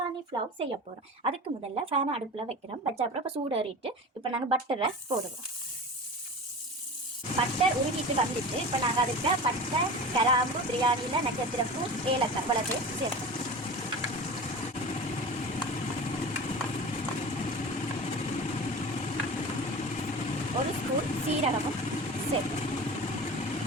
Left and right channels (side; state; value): both; normal; correlation 0.33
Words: ஃப்ளவ் செய்ய போகிறோம். அதுக்கு முதல்ல ஃபேனை அடுப்பில் வைக்கிறோம். வச்ச அப்புறம் இப்போ சூடேறிட்டு இப்போ நாங்கள் பட்டரை போடுவோம். பட்டர் உருகிட்டு வந்துட்டு இப்போ நாங்கள் அதுக்கு பட்டை, கிராம்பு, பிரியாணியில் நட்சத்திரப்பூ, ஏலக்காய் வளர்த்து சேர்ப்போம். ஒரு ஸ்பூன் சீரகமும் சேர்ப்போம்.